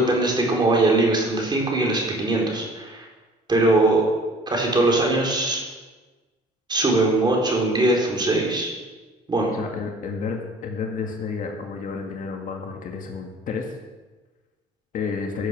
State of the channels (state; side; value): normal; both; correlation 0.50